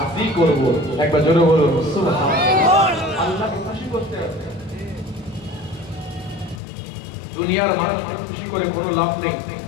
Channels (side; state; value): right; drops out; at 6.6 s